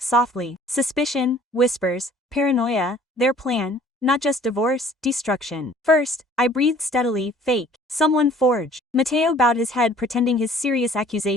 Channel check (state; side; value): normal; both; correlation 0.53